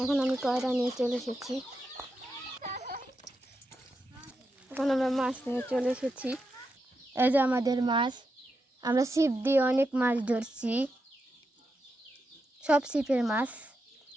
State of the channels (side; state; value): both; normal; correlation 0.86